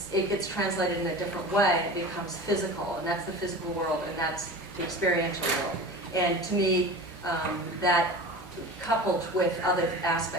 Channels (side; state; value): left; noise; hum, 24 dB below the sound